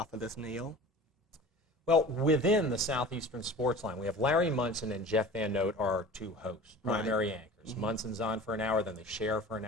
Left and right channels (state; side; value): normal; both; correlation 0.39